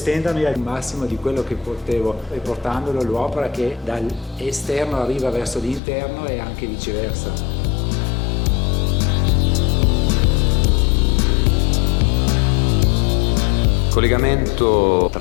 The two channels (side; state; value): right; drops out; at 5.8 s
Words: al massimo di quello che potevo e portandolo l'opera che dall'esterno arriva verso l'interno e anche viceversa. Il collegamento